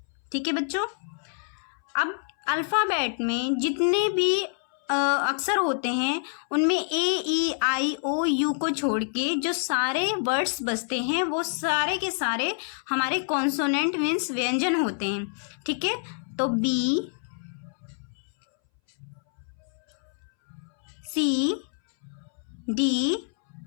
ठीक है बच्चों। अब अल्फ़ाबेट में जितने भी अक्षर होते हैं उनमें ए ई आई ओ यू को छोड़ के जो सारे वर्ड्स बचते हैं वो सारे के सारे हमारे कॉन्सोनेंट मीन्स व्यंजन होते हैं, ठीक है। तो B, C, D,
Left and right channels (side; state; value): right; silent; 60 dB below the other